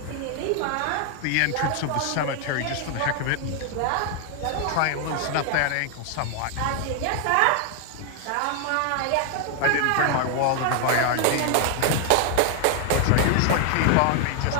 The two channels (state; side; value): different; both; correlation 0.00